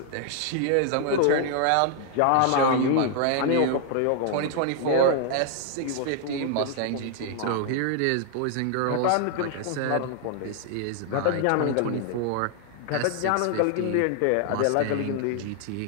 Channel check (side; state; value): both; different; correlation 0.00